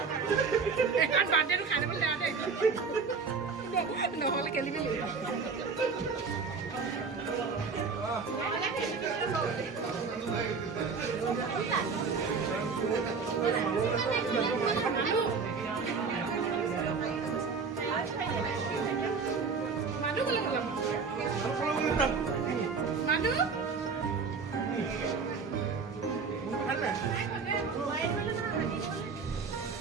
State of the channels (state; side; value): quieter; left; 5.1 dB